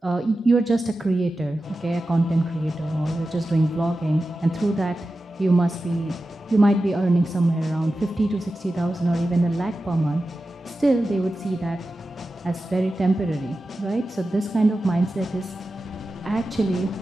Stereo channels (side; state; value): both; normal; correlation 0.93